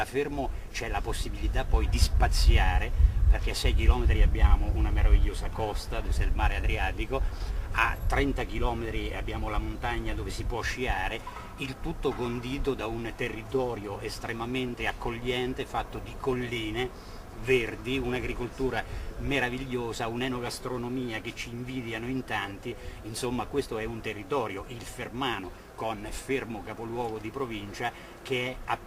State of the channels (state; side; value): identical; both; correlation 1.00